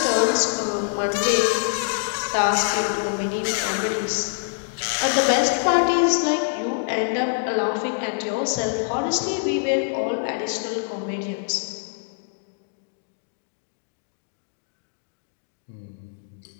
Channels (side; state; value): right; silent; digital silence